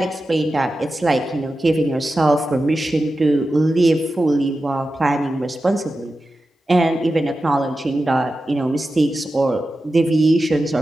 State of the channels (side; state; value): both; normal; correlation 0.92